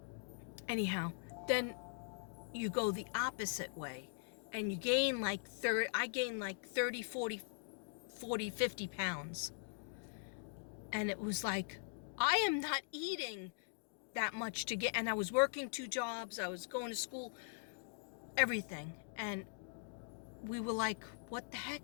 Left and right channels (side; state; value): right; silent; digital silence